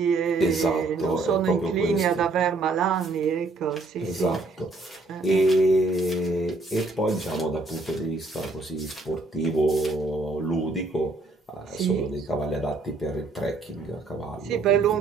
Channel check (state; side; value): quieter; left; 3.3 dB